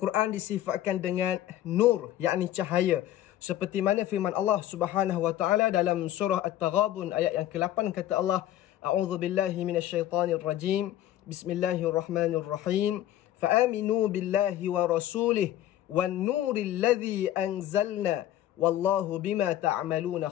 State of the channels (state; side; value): quieter; right; 12.9 dB